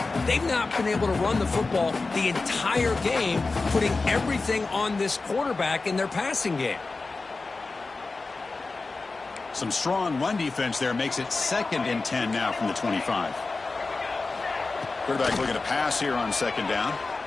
They've not been able to run the football the entire game, putting everything on this quarterback in their passing game. Some strong run defense there makes it 2nd and 10 now from the 25. Quarterback looking to pass here on 2nd down.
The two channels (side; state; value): right; quieter; 3.7 dB